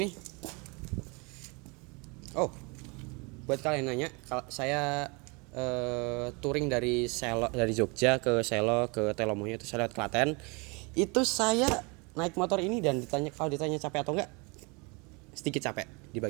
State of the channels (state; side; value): quieter; left; 29.8 dB